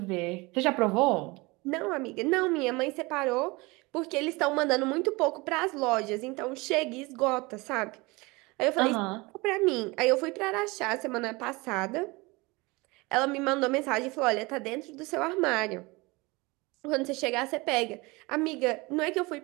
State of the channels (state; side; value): quieter; left; 24.4 dB